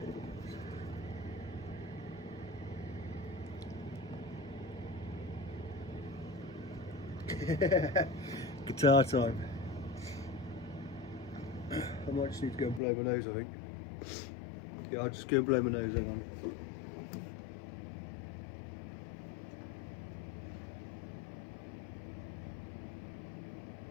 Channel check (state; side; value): drops out; right; at 12.8 s